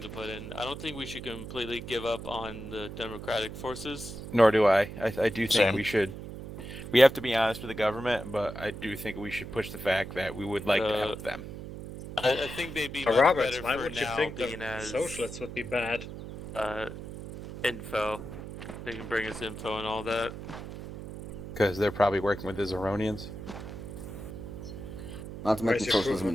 to put in. I don't think we should completely give up on the democratic forces. Nor do I. I do think Same. we should. We have to be honest with the government, but I do think we should push the fact that we would like to help them. I think they'd be much Roberts, better why for would you now think the being as socialists would be bad? Info. They can bring us info and all that. Because they're probably working with the Zeronians. Not to mention Where's your proof socialism of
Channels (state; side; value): noise; right; hum, 10 dB below the sound